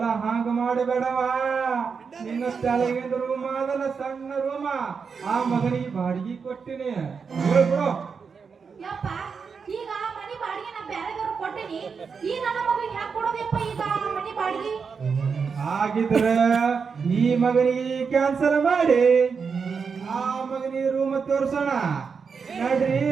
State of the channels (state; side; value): quieter; left; 5.7 dB